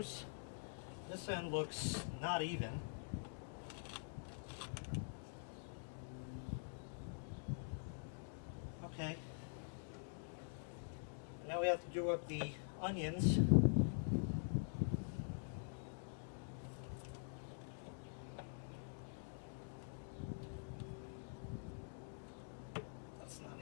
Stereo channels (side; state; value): right; silent; digital silence